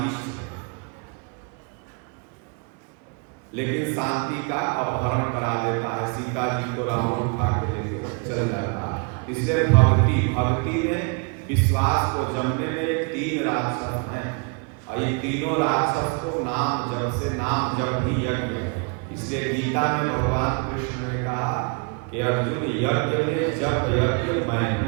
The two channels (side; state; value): left; quieter; 35.6 dB